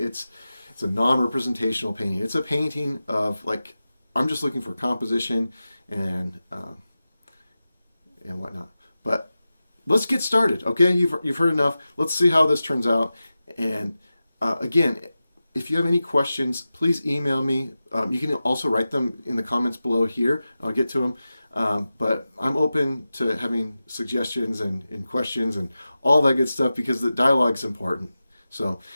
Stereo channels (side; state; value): both; inverted; correlation -0.94